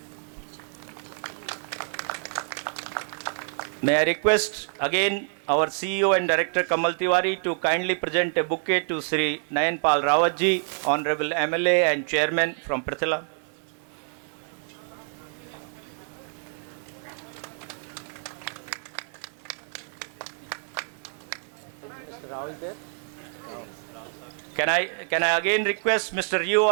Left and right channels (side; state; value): left; silent; 60 dB below the other